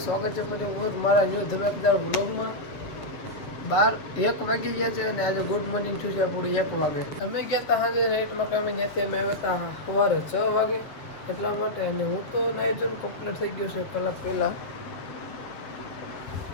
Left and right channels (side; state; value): right; late; 7.2 ms